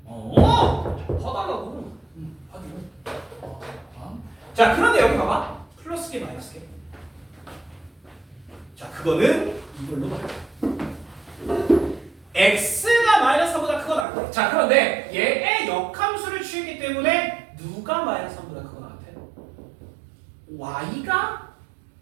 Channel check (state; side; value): drops out; left; at 14.1 s